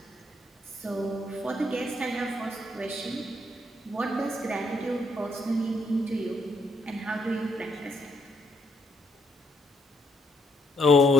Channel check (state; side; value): normal; both; correlation 0.73